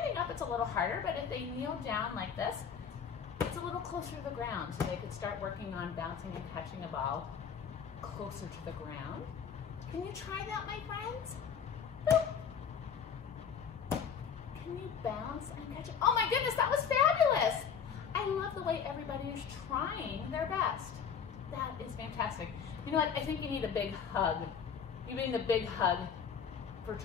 up, it's a little harder, but if they kneel down like this, it's a little closer to the ground, so they could start working on bouncing and catching a ball closer to the ground. Can you try that, my friends? Boop. Can you bounce and catch it? Oh my goodness, that was fabulous! I love the way everybody is trying their best. That is fantastic. You know what? I think you need a big hug. You need a big hug for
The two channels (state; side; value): quieter; right; 7.1 dB